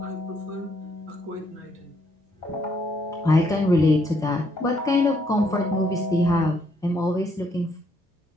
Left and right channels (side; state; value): both; normal; correlation 0.71